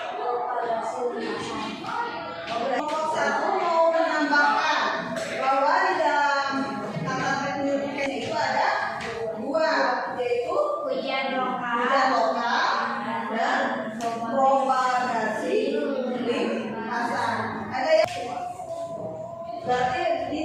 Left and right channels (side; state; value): both; identical; correlation 1.00